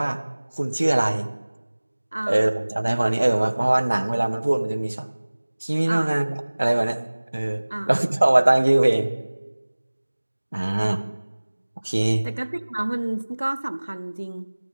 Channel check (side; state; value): both; inverted; correlation -1.00